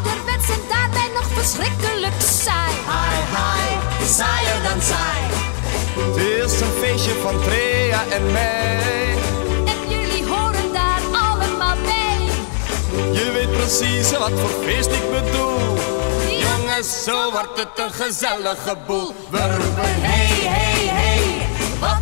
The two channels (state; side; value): silent; right; digital silence